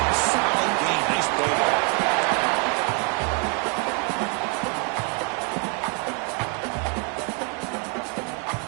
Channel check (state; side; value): quieter; left; 36.8 dB